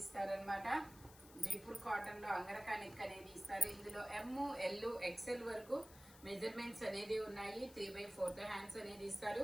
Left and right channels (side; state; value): left; noise; hiss, 20 dB below the sound